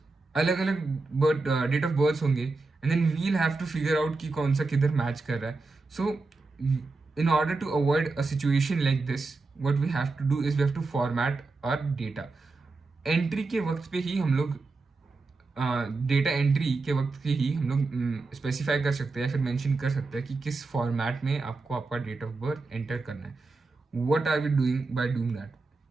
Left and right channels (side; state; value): left; quieter; 3.7 dB